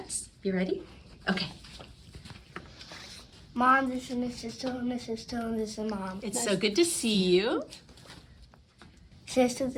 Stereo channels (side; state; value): both; identical; correlation 1.00